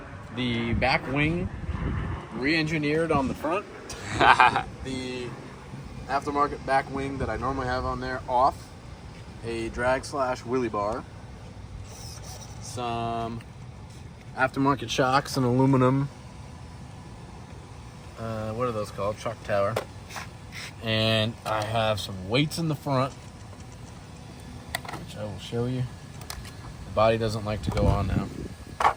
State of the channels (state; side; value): identical; both; correlation 1.00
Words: the back wing re-engineered on the front, the aftermarket back wing that I normally have on there off, a drag / wheelie bar, some aftermarket shocks and aluminum, what are those called? Shock tower. And I have some weights in the front, which I will show you. The body doesn't like to go on now.